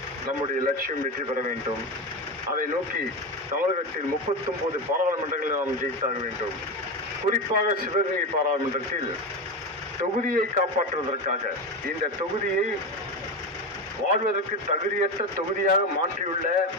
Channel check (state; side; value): normal; both; correlation 0.18